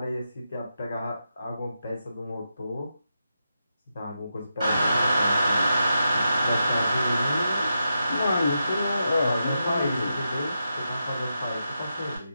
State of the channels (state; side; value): inverted; both; correlation -0.86